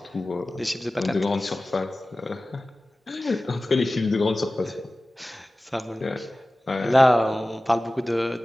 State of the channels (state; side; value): normal; both; correlation 0.97